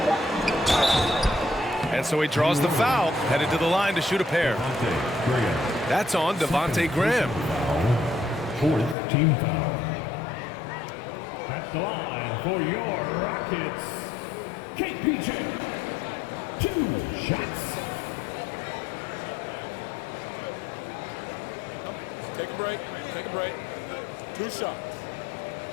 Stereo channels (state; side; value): drops out; right; at 9.0 s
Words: And so he draws the foul, headed to the line to shoot a pair. That's on Devontae Graham. 4th team foul. At the line for your Rockets, KPJ. 2 shots. Take a break. Take a break. 2 shots.